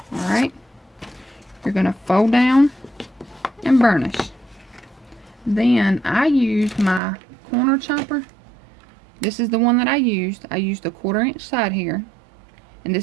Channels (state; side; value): drops out; left; at 7.0 s